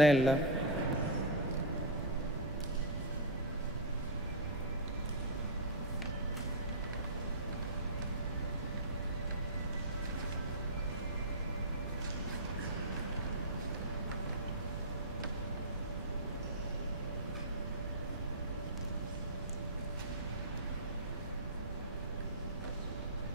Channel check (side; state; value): both; normal; correlation -0.09